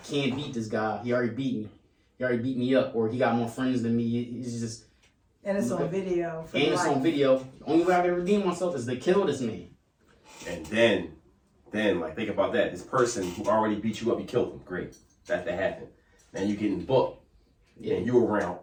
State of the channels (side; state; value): both; identical; correlation 1.00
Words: can't beat this guy. He already beat me. He already beat me up, or he got more friends than me. It's just... And it's on video. And it's on video. The only way I can redeem myself is to kill this man. And then, like, think about that. This person who already beat you up, you killed him. Great. That happened. Now you're getting booked. Yeah. And you're around